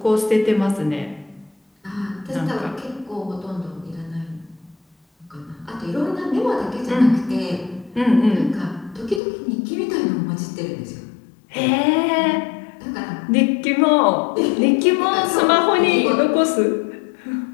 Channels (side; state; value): right; drops out; at 9.2 s